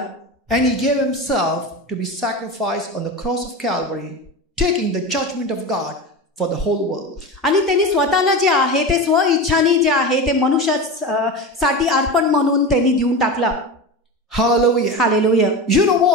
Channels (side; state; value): both; normal; correlation 0.25